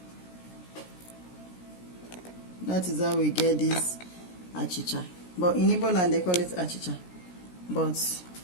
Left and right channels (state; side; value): late; right; 17 ms